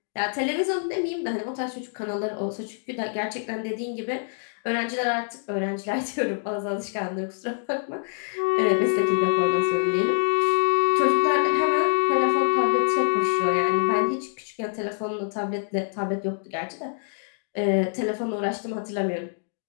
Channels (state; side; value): silent; right; digital silence